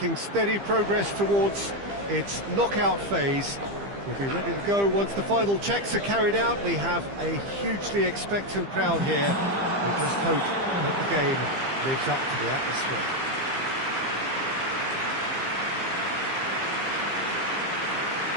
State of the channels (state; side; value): late; left; 15 ms